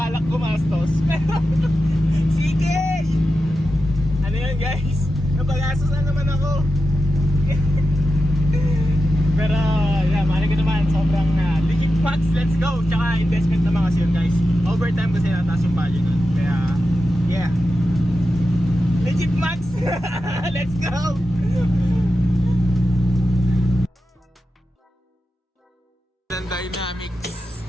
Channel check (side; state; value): both; normal; correlation 0.90